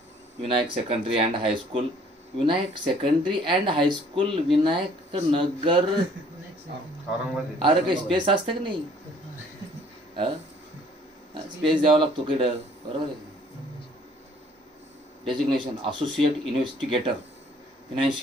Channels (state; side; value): normal; both; correlation 0.58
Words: Vinayak secondary and high school, Vinayak secondary and high school, Vinayak Nagar. अरे काही स्पेस असतं की नाही, स्पेस द्यावा लागतो किडं, बरोबर आहे. Designation associate investigator,